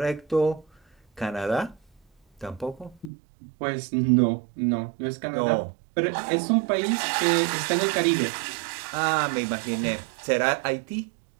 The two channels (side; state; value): left; drops out; at 3.1 s